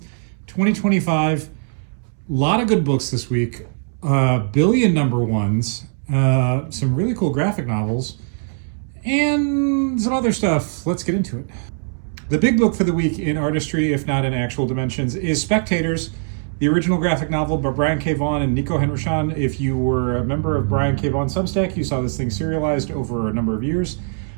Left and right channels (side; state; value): left; silent; 65 dB below the other